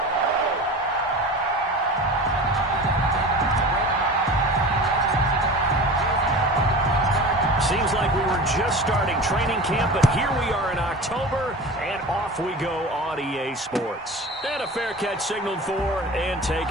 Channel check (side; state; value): both; normal; correlation 0.34